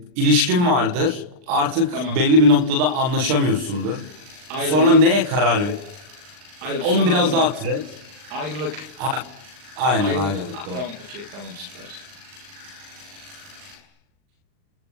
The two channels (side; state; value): left; late; 39 ms